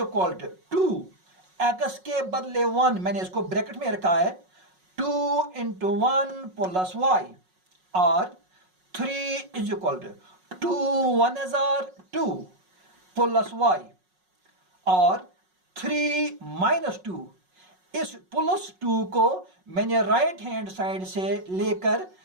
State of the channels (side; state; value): left; late; 5.5 ms